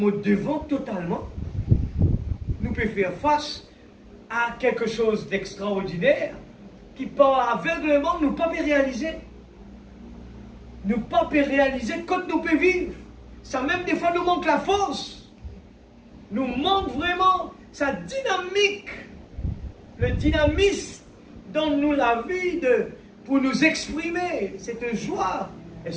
devons totalement, nous pouvons faire face à quelque chose d'extraordinaire qui par aveuglement nous pas réaliser. Nous pas réaliser quand nous pouvons vivre. Ça même des fois nous manque la force. Nous manque vraiment sa dynamique, le dynamisme dans nous la vie pour nous exprimer cette joie.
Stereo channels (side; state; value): both; identical; correlation 1.00